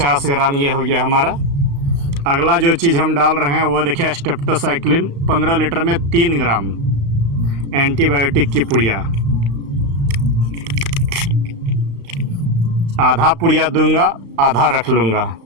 ग्राम ये हो गया हमारा। अगला जो चीज़ हम डाल रहे हैं वो देखिए स्टेप्टोसाइक्लिन 15 लीटर में 3 ग्राम एंटीबायोटिक की पुड़िया। आधा पुड़िया दूंगा, आधा रख लूँगा।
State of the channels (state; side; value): late; left; 35 ms